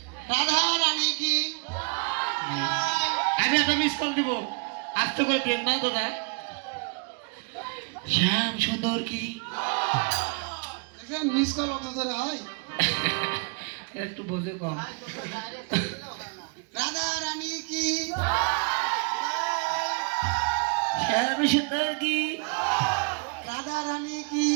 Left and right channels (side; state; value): left; quieter; 36.4 dB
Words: রাধা রানী কি? আমি একটা মিস কল দিব, আস্তে করে দিন না দাদা। শ্যাম সুন্দর কি, মিস কল অত ধরে হয়? একটু বোঝে কম। রাধা রানী কি? শ্যাম সুন্দর কি, রাধা রানী কি?